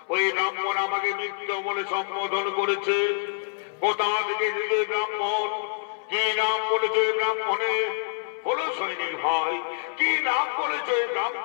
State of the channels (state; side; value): silent; right; 61 dB below the other